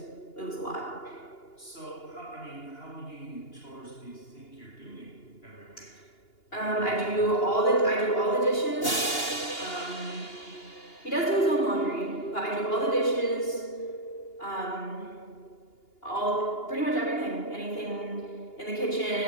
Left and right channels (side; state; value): right; late; 2.8 ms